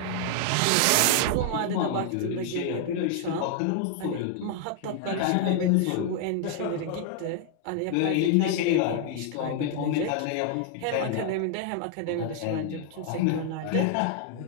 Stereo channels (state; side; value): different; both; correlation 0.00